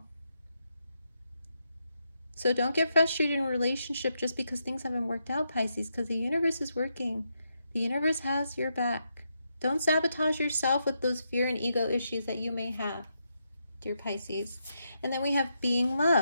So don't get frustrated in a relationship just because things haven't worked out, Pisces, because the universe is working. The universe has your back. Don't sabotage yourself with those fear and ego issues that you may have, dear Pisces. And then we have being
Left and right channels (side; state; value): both; inverted; correlation -0.82